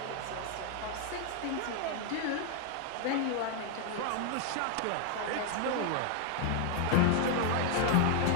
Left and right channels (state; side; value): different; both; correlation 0.00